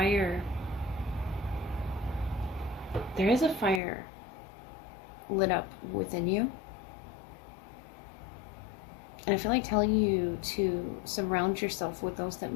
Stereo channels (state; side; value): drops out; right; at 3.8 s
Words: There is a fire lit up within you. And I feel like telling you to surround yourself with those that